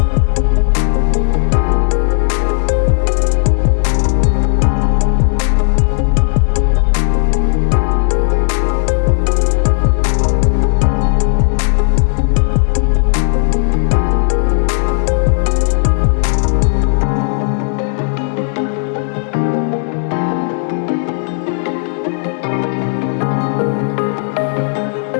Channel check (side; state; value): right; silent; digital silence